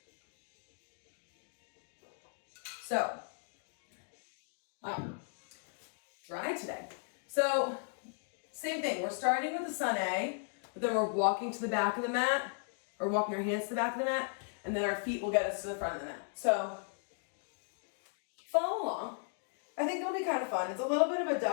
So, wow, dry today. So, same thing. We're starting with the sun A, but then we're walking to the back of the mat, or walking our hands to the back of the mat, and then our feet will get us to the front of the mat. So, follow along. I think it'll be kind of fun. It's a little bit of a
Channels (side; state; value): right; quieter; 39.9 dB